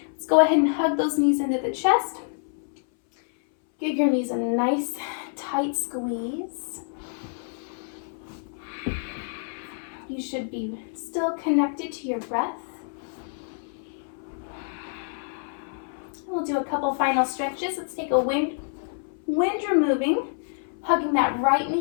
Let's go ahead and hug those knees into the chest. Give your knees a nice tight squeeze. You should be still connected to your breath. We'll do a couple final stretches. Let's take a wind removing, hugging that right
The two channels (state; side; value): silent; right; 60 dB below the other